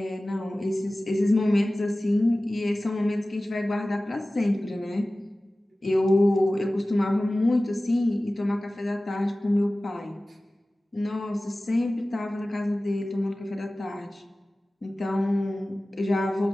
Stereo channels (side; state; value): both; normal; correlation 0.97